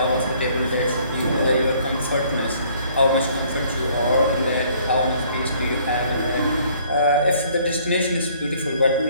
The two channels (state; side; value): inverted; both; correlation -0.60